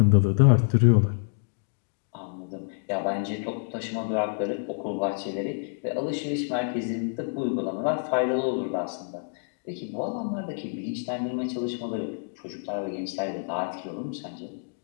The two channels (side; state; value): right; silent; digital silence